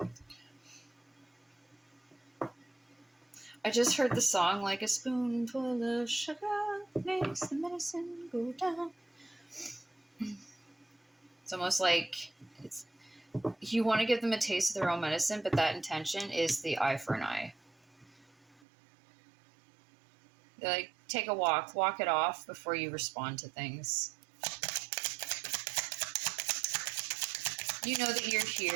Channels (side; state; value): left; drops out; at 18.6 s